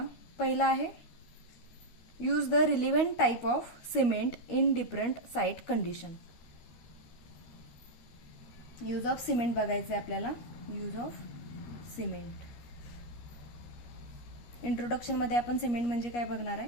पहिला आहे use the relevant type of cement in different site condition. Use of cement बघायचं आहे आपल्याला. Use of cement. इंट्रोडक्शन मध्ये आपण सिमेंट म्हणजे काय बघणार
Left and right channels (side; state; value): right; late; 12 ms